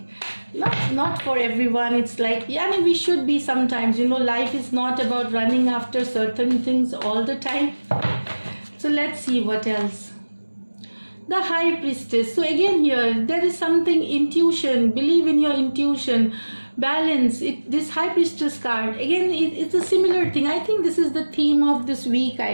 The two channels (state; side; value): inverted; both; correlation -1.00